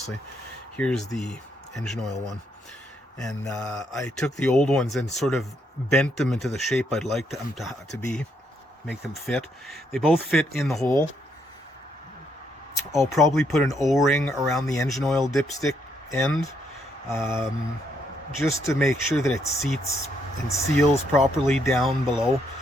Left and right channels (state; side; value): normal; both; correlation 0.74